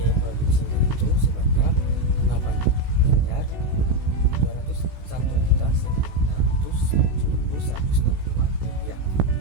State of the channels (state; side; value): late; left; 16 ms